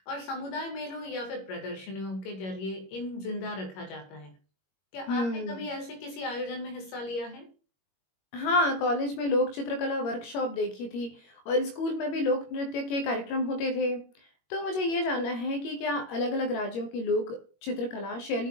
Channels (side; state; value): right; late; 21 ms